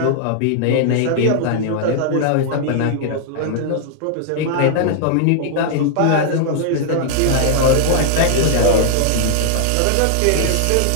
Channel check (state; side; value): different; both; correlation -0.01